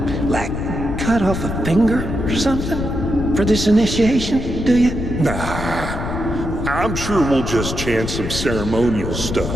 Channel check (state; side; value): noise; left; rumble, 5 dB below the sound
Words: like, cut off a finger or something for this initiation, do you? Nah, I'm sure we'll just chant some ceremonial